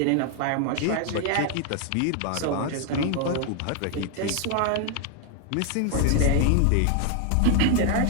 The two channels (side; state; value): both; different; correlation 0.00